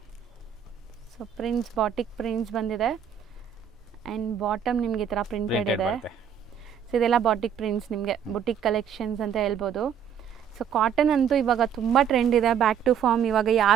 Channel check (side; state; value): left; quieter; 8.4 dB